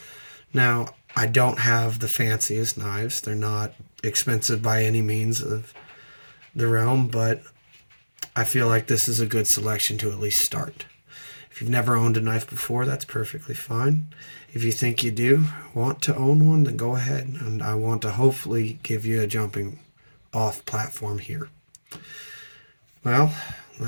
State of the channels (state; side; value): inverted; both; correlation -1.00